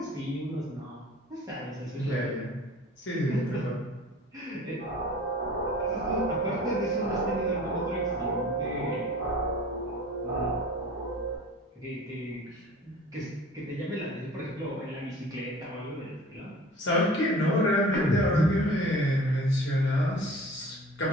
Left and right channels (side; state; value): both; normal; correlation 0.43